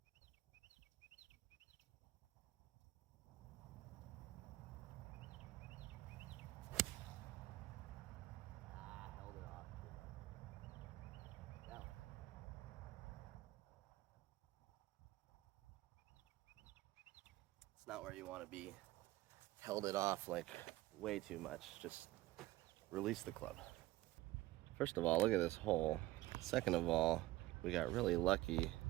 Not where you want to be. Held it off like way too much. Just release the club. First of all, look at this hole. Second of all, we got really lucky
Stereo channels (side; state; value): left; quieter; 17.7 dB